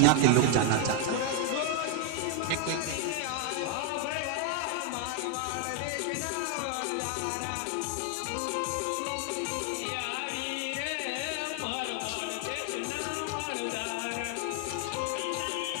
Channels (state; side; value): different; both; correlation 0.00